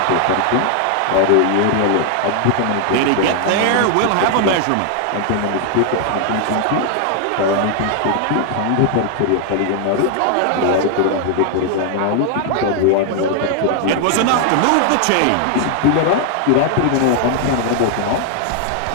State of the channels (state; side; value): different; both; correlation 0.00